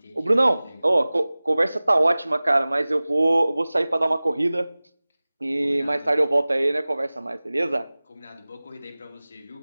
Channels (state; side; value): inverted; both; correlation -0.99